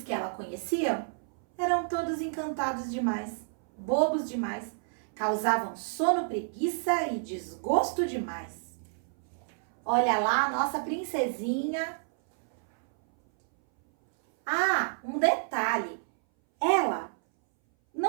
que ela conhecia eram todos encantados demais, bobos demais, causavam sono, preguiça e desgosto demais. Olha lá a nossa princesinha. Um detalhe, ela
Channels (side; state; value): left; silent; 58 dB below the other